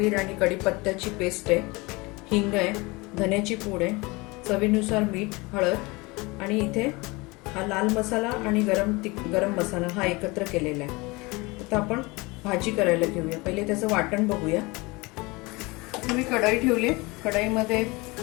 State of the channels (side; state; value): right; quieter; 24.5 dB